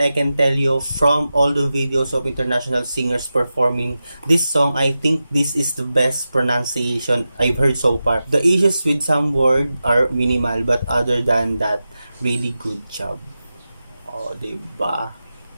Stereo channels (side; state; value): both; inverted; correlation -0.93